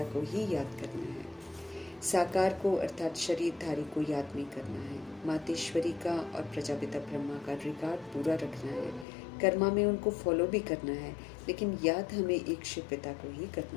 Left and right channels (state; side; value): drops out; right; at 9.1 s